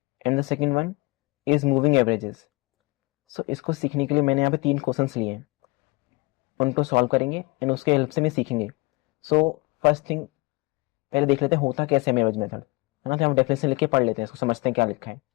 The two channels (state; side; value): quieter; right; 24.6 dB